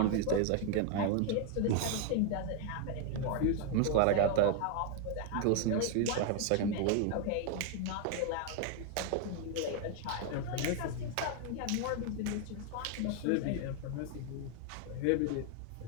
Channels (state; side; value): different; both; correlation 0.00